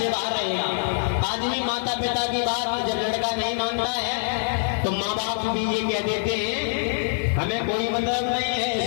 बाहर रहेगा। आदमी माता पिता की बात जब लड़का नहीं मानता है तो माँ बाप भी ये कह देते हैं हमें कोई मतलब नहीं है,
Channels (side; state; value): right; silent; digital silence